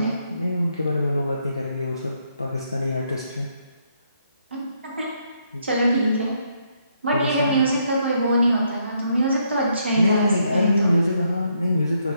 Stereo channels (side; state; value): both; inverted; correlation -0.74